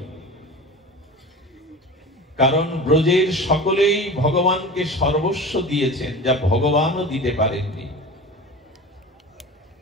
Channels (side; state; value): both; normal; correlation 0.34